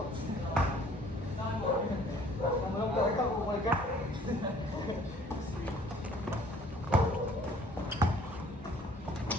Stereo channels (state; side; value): normal; both; correlation 0.55